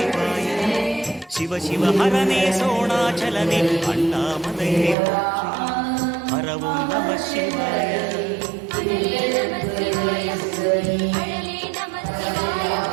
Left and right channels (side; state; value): left; drops out; at 5.0 s